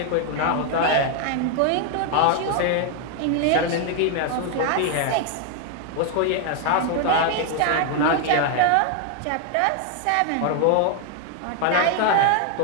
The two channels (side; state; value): both; different; correlation 0.00